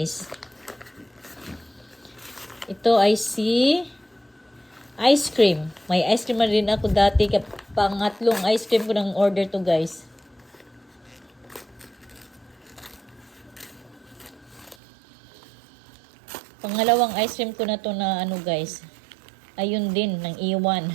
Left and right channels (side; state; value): left; drops out; at 14.8 s